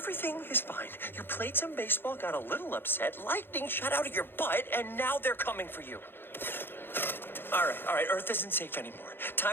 Everything is fine. You played some baseball, got a little upset, lightning shot out of your butt, and now they're coming for you. All right, Earth isn't safe anymore.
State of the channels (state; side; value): late; right; 0.10 ms